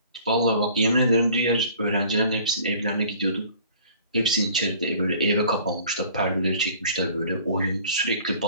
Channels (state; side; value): inverted; both; correlation -0.51